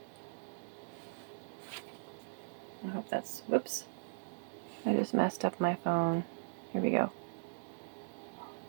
I hope that's, whoops, I just messed up my phone. Here we go.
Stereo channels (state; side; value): silent; left; digital silence